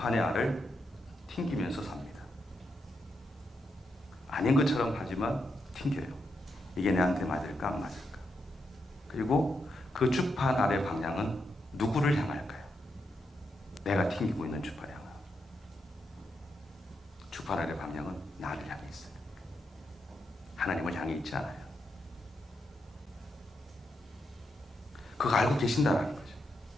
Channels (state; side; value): normal; both; correlation 0.83